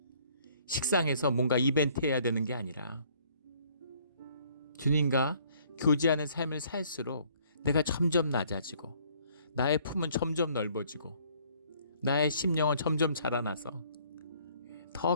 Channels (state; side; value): inverted; both; correlation -0.61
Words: 식상해서 뭔가 이벤트 해야 되는 게 아니라 주님과 교제하는 삶을 살수록 내가 점점 낮아지고 나의 품은 점점 넓어지고 나의 심령은 점점 자라나서 더